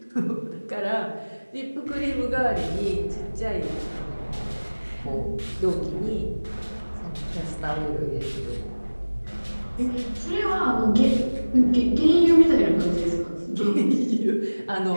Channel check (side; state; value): both; inverted; correlation -1.00